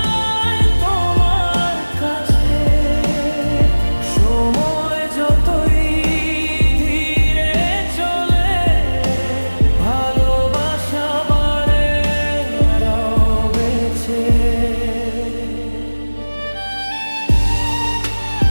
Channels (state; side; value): inverted; both; correlation -1.00